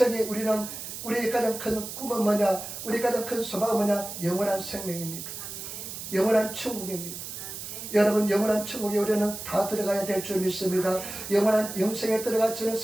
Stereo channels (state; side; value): noise; right; hiss, 9 dB below the sound